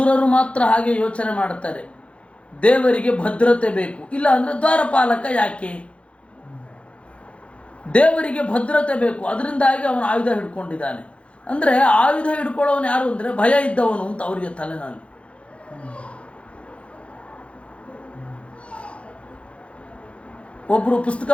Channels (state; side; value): late; right; 0.061 ms